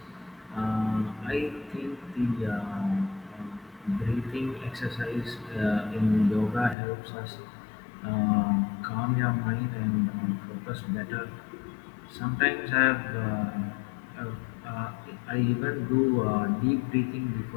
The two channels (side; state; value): right; drops out; at 6.8 s